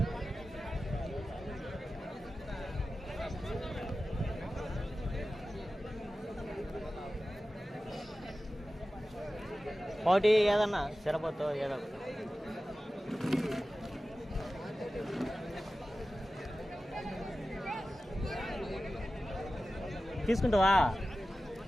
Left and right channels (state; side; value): normal; both; correlation 0.95